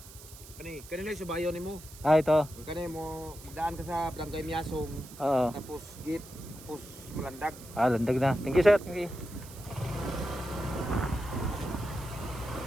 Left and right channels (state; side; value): noise; right; hiss, 18 dB below the sound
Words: Kanina yung subayo ni mo. Ito. Kanina mo magdaan ka sa Barangay Miasong. Oo. Tapos gate, tapos malandag. Landag na. Thank you, sir. Thank you.